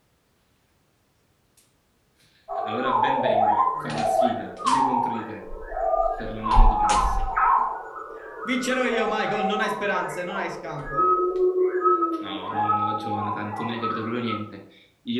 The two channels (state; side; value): identical; both; correlation 1.00